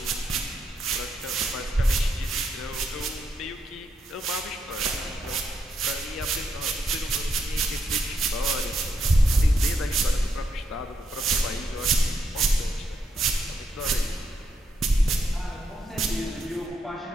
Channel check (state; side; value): normal; both; correlation 0.79